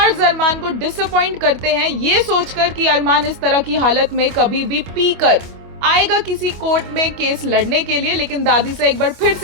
अरमान को डिसअपॉइंट करते हैं, ये सोचकर कि अरमान इस तरह की हालत में कभी भी पीकर आएगा किसी कोर्ट में केस लड़ने के लिए। लेकिन दादी से एक बार फिर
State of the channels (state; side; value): late; left; 25 ms